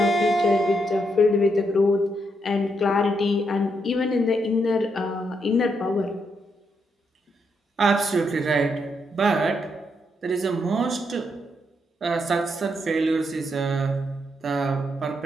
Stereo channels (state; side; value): normal; both; correlation 0.79